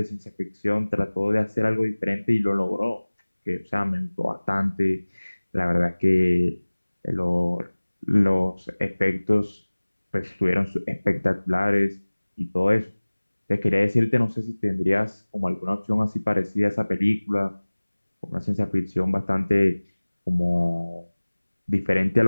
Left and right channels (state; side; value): inverted; both; correlation -1.00